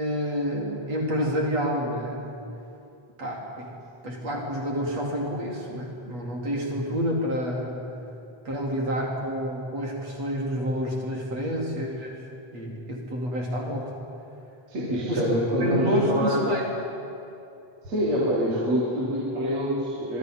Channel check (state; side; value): late; left; 8.2 ms